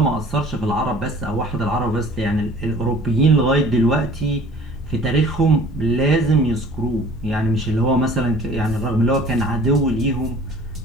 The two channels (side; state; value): both; normal; correlation 0.50